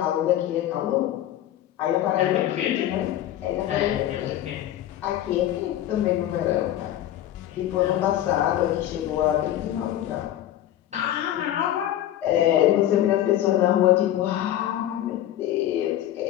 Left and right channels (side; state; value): right; quieter; 12.5 dB